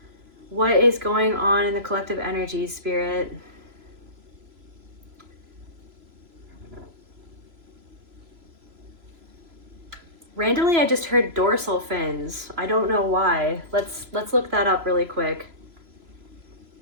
What is going on in the collective energies, spirit? Randomly, I just heard dorsal fins. I don't know why. Let's look that up really quick.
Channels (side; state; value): left; late; 3.0 ms